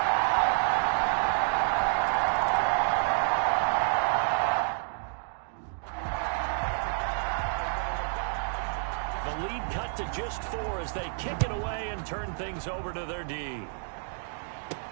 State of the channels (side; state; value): left; silent; digital silence